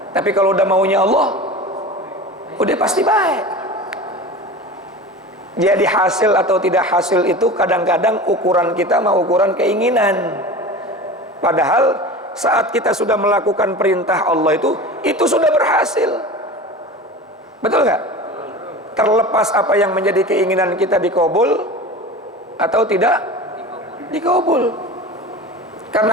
Tapi kalau udah maunya Allah, udah pasti baik. Jadi hasil atau tidak hasil itu kadang-kadang ukuran kita mau ukuran keinginan. Padahal saat kita sudah melakukan perintah Allah itu sudah berhasil. Betul nggak? Terlepas apa yang menjadi keinginan kita dikabul atau tidak dikabul. Karena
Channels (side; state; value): both; normal; correlation 0.33